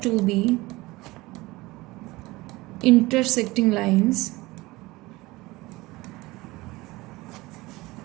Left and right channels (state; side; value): quieter; left; 20.7 dB